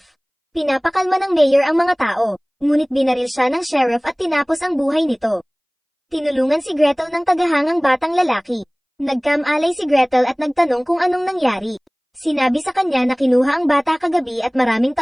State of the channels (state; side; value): identical; both; correlation 1.00